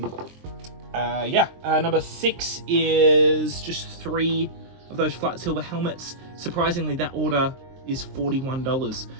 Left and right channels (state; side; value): late; left; 23 ms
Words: 6 is just 3 of those flat silver helmets. Surprisingly, that order is $41.